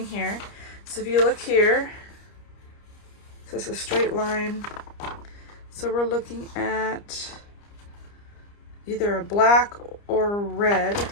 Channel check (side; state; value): right; late; 30 ms